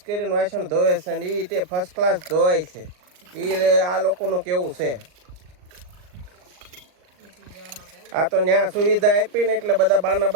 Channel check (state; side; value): late; left; 39 ms